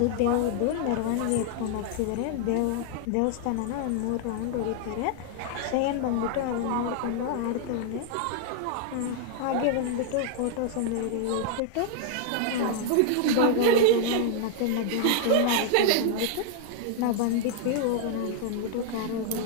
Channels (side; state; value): both; different; correlation 0.00